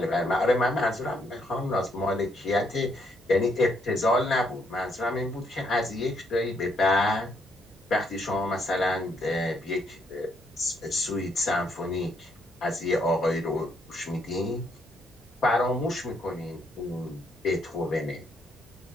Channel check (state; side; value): normal; both; correlation 0.73